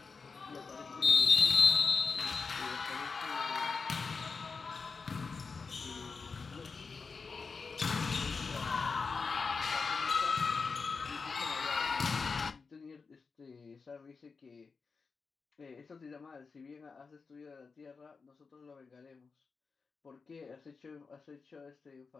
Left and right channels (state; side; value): quieter; right; 4.8 dB